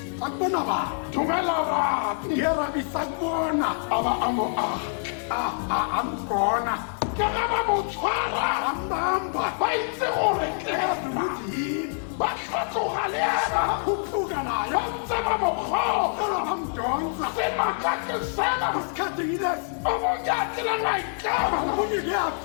akubona bani dumela rabi yerabi sakubona a ba a mo aga ambona ke ge ba mo tshwara ambamba ba itse gore ke ukuthi yini ba tlhatloga le ena khuphuka nayo ba ntse ba mo kgotsa sala bamdonsa semakake sena isikhathini lesi o monyakile maikemo omunye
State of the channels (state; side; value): silent; right; digital silence